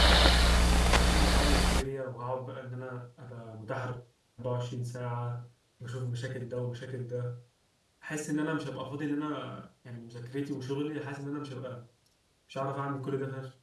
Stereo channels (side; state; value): both; identical; correlation 1.00